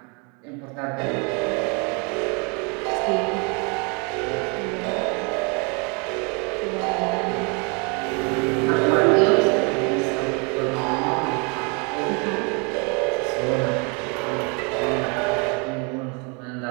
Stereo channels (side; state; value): left; quieter; 32.9 dB